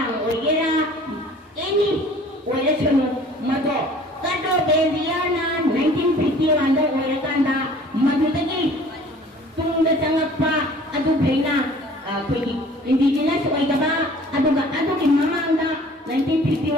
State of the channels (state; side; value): normal; both; correlation 0.50